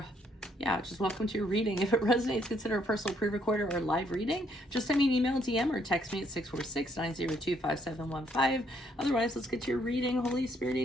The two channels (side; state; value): both; normal; correlation 0.70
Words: just welcome to your reading. If it resonates, consider a personal pre-recorder or live reading. Just send me an email, DM, or text me at 646-902-5715. Otherwise, let's get to your reading. Holy Spirit,